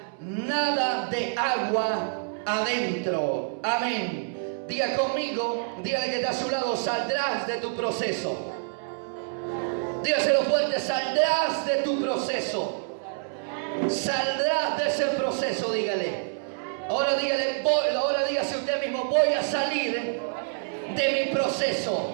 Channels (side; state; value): left; silent; 60 dB below the other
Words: nada de agua adentro. Amén. Diga conmigo, dígale que está a su lado: saldrás de tu proceso. Dígaselo fuerte: saldrás de tu proceso. Saldrás de ese proceso, dígale. Ahora dígale, ahora dígase usted mismo: voy a salir de mi proceso.